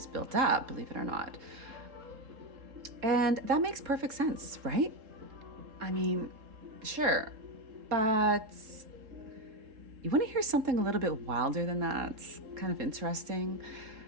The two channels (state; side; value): late; left; 3.7 ms